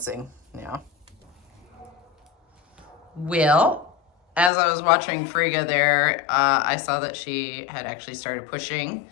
now. Well, as I was watching Frigga there, I saw that she had actually started pushing,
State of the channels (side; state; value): right; drops out; at 4.5 s